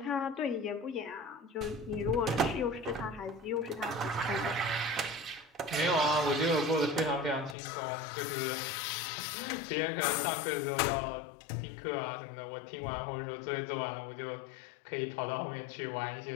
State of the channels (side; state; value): right; drops out; at 7.6 s